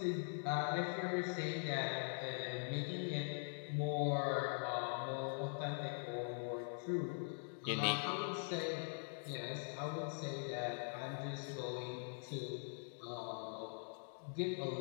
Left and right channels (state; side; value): silent; right; digital silence